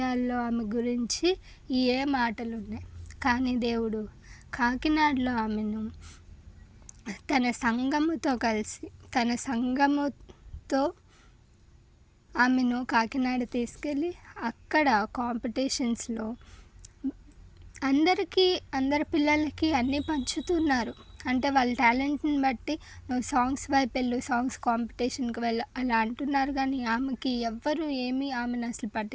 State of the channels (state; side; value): identical; both; correlation 1.00